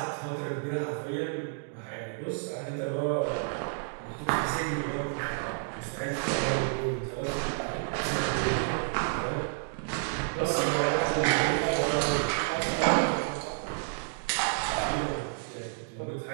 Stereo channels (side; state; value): left; silent; digital silence